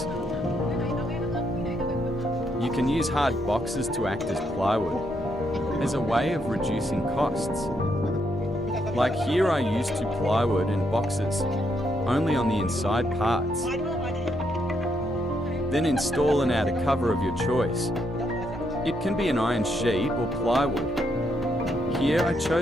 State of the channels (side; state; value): both; normal; correlation 0.77